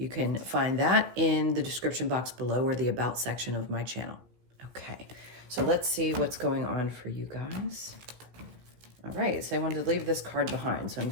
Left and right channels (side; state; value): left; late; 16 ms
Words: can find that in the description box below or the About section of my channel. Okay, so let's see what's going on for you guys. All right, so I wanted to leave this card behind, so I'm